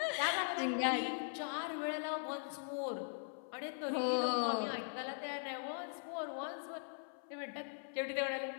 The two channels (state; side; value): silent; right; 51 dB below the other